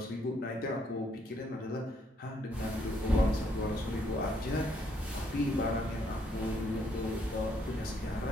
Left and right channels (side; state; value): both; normal; correlation 0.71